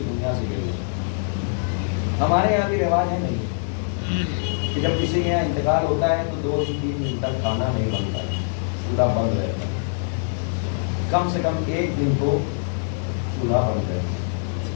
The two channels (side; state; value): right; silent; digital silence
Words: دنیا سے گئے. ہمارے یہاں بھی رواج ہے نہیں کہ جب کسی کے یہاں انتقال ہوتا ہے تو 2 سے 3 دن تک کھانا نہیں بنتا ہے، چولہا بند رہتا ہے. کم سے کم 1 دن تو چولہا بند رہتا ہے.